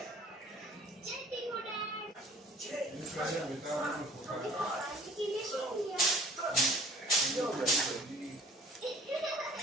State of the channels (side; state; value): both; normal; correlation 0.51